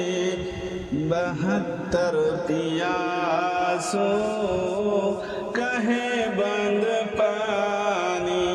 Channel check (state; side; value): identical; both; correlation 1.00